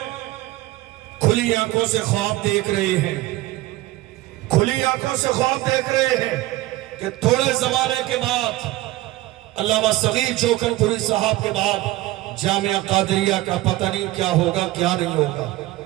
کھلی آنکھوں سے خواب دیکھ رہے ہیں، کھلی آنکھوں سے خواب دیکھ رہے ہیں کہ تھوڑے زمانے کے بعد علامہ صغیر جوکن پوری صاحب کے بعد جامعہ قادریہ کا پتہ نہیں کیا ہوگا کیا نہیں ہوگا۔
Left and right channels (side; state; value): left; quieter; 17.7 dB